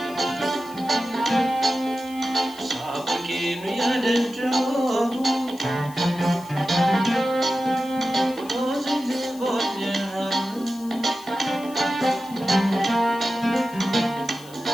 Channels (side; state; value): left; noise; hiss, 21 dB below the sound